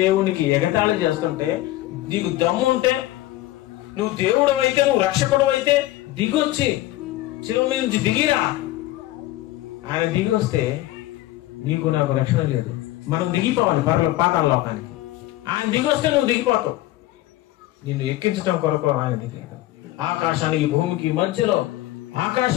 ఎగతాళి చేస్తుంటే, నీకు దమ్ముంటే, నువ్వు దేవుడు అయితే, నువ్వు రక్షకుడు అయితే దిగొచ్చి శిలువ మీద నుంచి దిగిరా. ఆయన దిగి వస్తే నీకు నాకు రక్షణ లేదు, మనం దిగిపోవాలి పాతాళ లోకానికి. ఆయన దిగి వస్తే నువ్వు దిగిపోతావు. నిన్ను ఎక్కించడం కొరకు ఆయన దిగాడు. ఆకాశానికి భూమికి మధ్యలో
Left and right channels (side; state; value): right; quieter; 16.3 dB